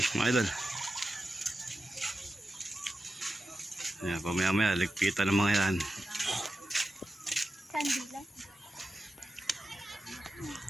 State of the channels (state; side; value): normal; both; correlation 0.92